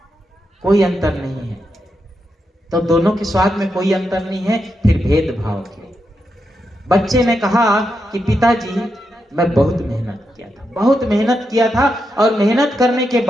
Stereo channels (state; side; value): normal; both; correlation 0.85